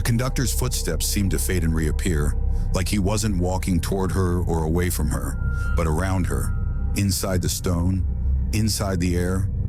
conductor's footsteps seemed to fade and reappear, like he wasn't walking toward her or away from her, but around her, inside the stone, inside the air,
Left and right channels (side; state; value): both; identical; correlation 1.00